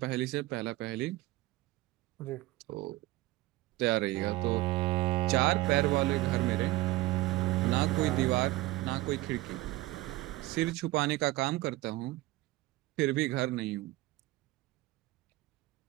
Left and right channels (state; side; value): quieter; left; 18.4 dB